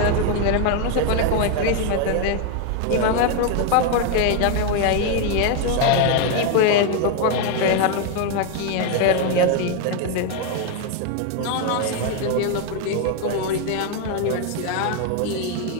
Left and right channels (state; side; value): different; both; correlation 0.01